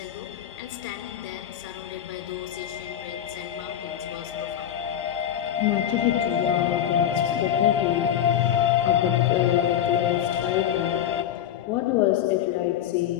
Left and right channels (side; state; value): right; quieter; 10.5 dB